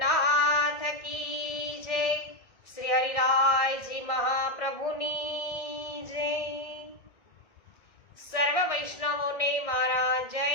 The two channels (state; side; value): late; right; 1.6 ms